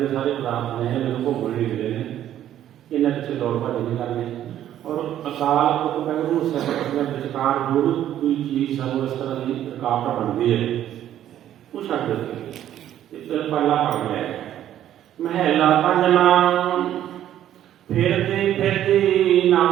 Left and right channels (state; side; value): quieter; left; 11.6 dB